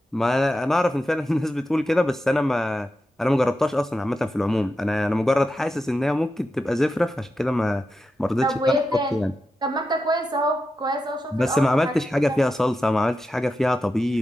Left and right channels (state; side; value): normal; both; correlation 0.90